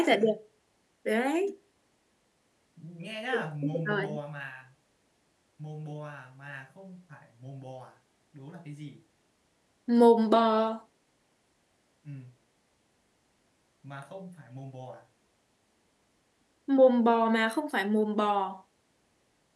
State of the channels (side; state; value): both; identical; correlation 1.00